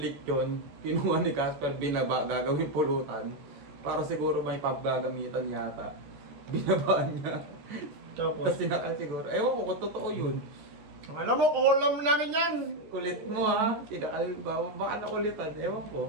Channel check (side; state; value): left; late; 13 ms